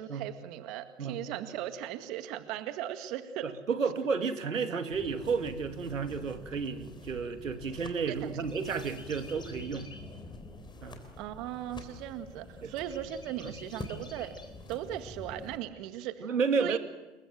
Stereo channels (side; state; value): left; quieter; 5.6 dB